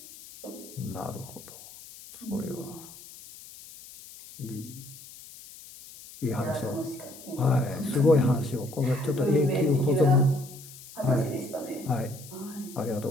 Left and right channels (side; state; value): left; noise; hiss, 17 dB below the sound